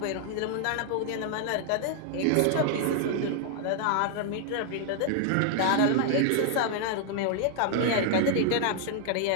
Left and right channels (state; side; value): different; both; correlation 0.00